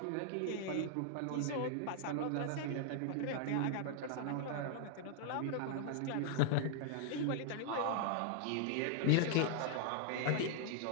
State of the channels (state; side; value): different; both; correlation -0.01